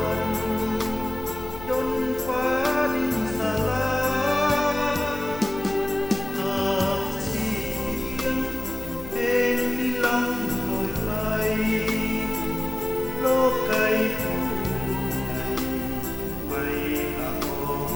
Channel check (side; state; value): left; noise; hum, 12 dB below the sound